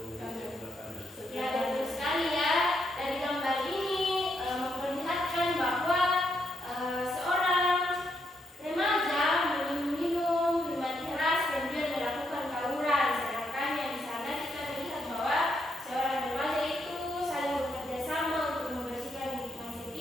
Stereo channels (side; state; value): both; normal; correlation 0.78